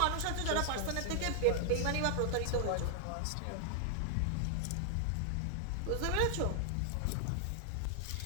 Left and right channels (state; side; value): different; both; correlation 0.00